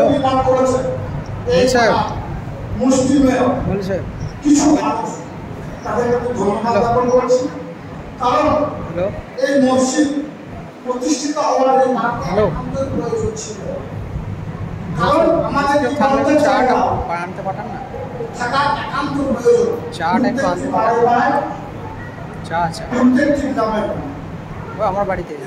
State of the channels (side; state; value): both; identical; correlation 1.00